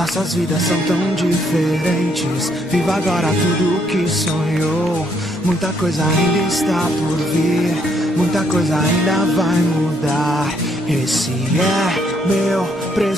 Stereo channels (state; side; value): normal; both; correlation 0.71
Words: vidas são tão diferentes. Viva agora tudo que sonhou. Muita coisa ainda está por vir. Muita coisa ainda vai mudar. Esse é meu